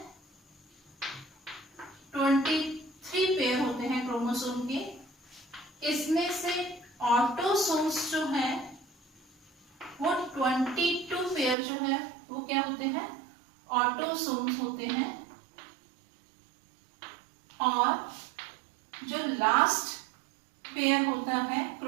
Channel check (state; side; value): drops out; left; at 11.6 s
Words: 23 पेयर होते हैं क्रोमोसोम के। इसमें से ऑटोसोम्स जो है वो 22 पेयर जो है वो क्या होते हैं? ऑटोसोम्स होते हैं। और जो लास्ट पेयर होता है